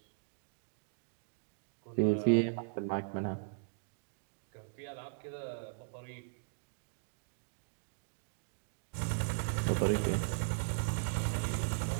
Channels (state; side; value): silent; left; digital silence